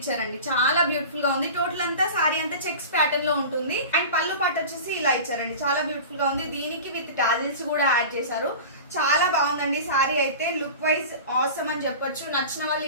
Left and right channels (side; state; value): both; inverted; correlation -0.34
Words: చాలా బ్యూటిఫుల్ గా ఉంది. టోటల్ అంతా సారీ అంతా చెక్స్ ప్యాటర్న్ లో ఉంటుంది. అండ్ పళ్ళు పాటు వచ్చేసి ఇలా ఇచ్చారండి, చాలా బ్యూటిఫుల్ గా ఉంది. దీనికి విత్ టాజిల్స్ కూడా యాడ్ చేశారు. చాలా బాగుందండి సారీ అయితే, లుక్ వైజ్ ఆసమ్ అని చెప్పొచ్చు. నచ్చిన వాళ్ళు